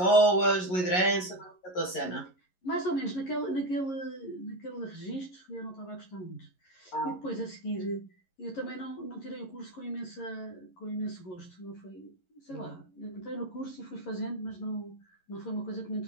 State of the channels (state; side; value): late; right; 11 ms